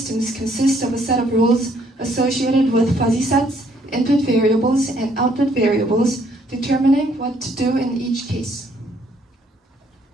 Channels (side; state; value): both; normal; correlation 0.66